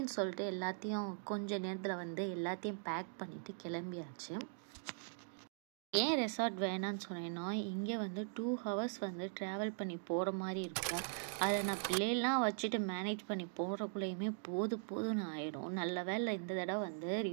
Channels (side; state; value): left; silent; digital silence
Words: சொல்லிட்டு எல்லாத்தையும் கொஞ்ச நேரத்தில் எல்லாத்தையும் பேக் பண்ணிவிட்டு கிளம்பியாச்சு. ஏன் ரெசார்ட் வேணான்னு சொன்னேன்னா, இங்கே 2 ஹவர்ஸ் ட்ராவல் பண்ணி போகிற மாதிரி இருக்கும். அதை நான் பிள்ளைலாம் வச்சுட்டு மேனேஜ் பண்ணி போகிறக்குள்ளேயுமே போதும்னு ஆகிடும். நல்ல வேலை இந்த தடவை